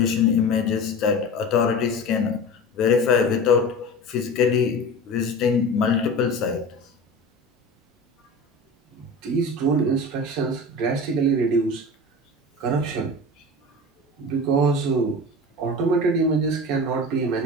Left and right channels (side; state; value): both; normal; correlation 0.32